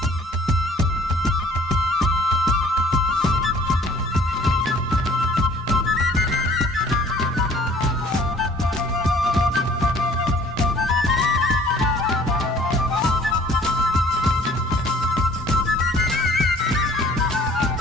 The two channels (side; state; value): both; normal; correlation 0.53